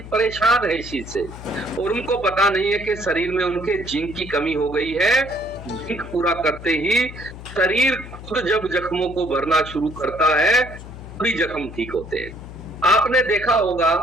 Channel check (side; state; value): left; noise; hum, 13 dB below the sound